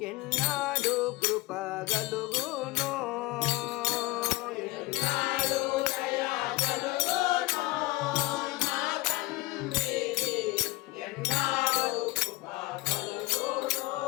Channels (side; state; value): right; quieter; 20.2 dB